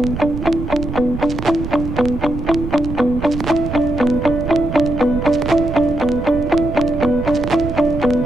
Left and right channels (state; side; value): noise; right; rumble, 7 dB below the sound